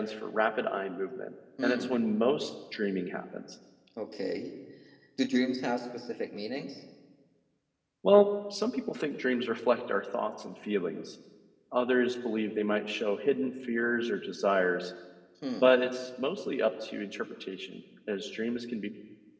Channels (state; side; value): identical; both; correlation 1.00